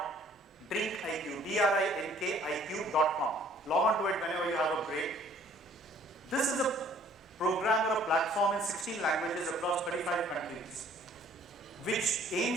Log on to it whenever you have a break. This is a program or a platform in 16 languages across 35 countries, which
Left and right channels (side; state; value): both; normal; correlation 0.57